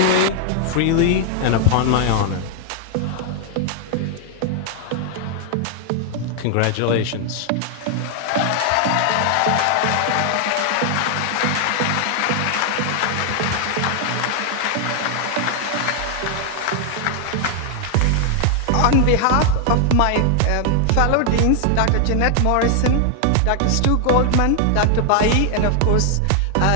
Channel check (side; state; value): both; different; correlation 0.00